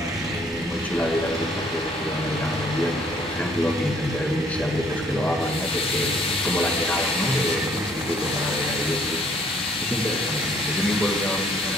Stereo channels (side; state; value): left; noise; hum, 29 dB below the sound